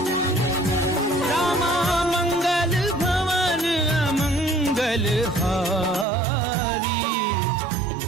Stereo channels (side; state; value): left; drops out; at 6.1 s